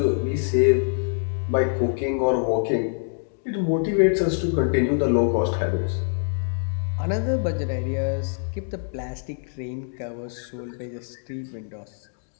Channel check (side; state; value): right; silent; digital silence